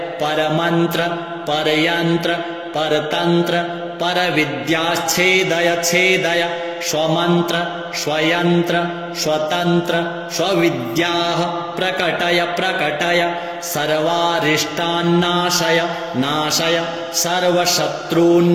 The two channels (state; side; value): identical; both; correlation 1.00